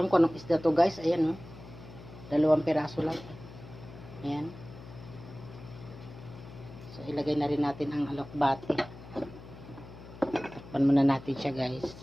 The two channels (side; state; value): left; noise; hum, 16 dB below the sound